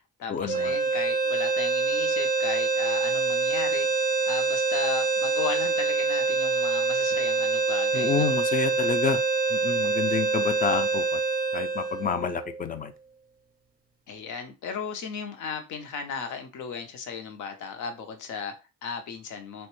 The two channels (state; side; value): normal; both; correlation 0.32